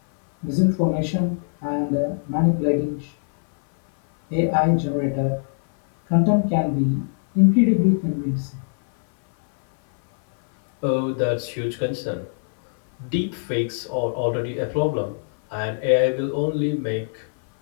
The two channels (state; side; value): silent; right; 59 dB below the other